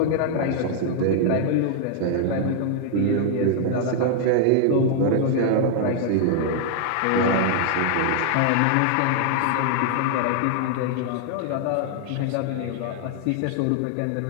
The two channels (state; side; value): different; both; correlation 0.00